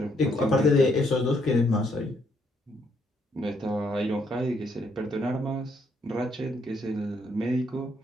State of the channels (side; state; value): both; normal; correlation 0.72